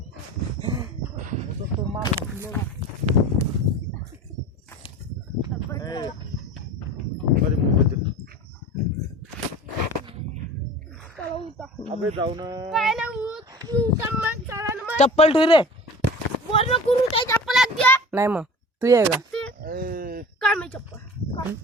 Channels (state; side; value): normal; both; correlation 0.37